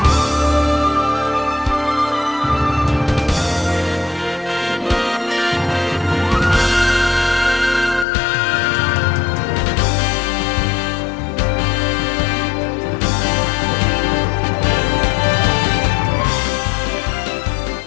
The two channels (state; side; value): drops out; right; at 8.1 s